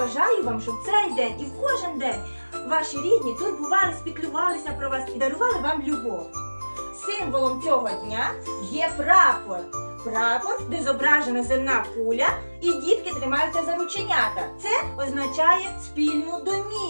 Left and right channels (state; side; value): inverted; both; correlation -1.00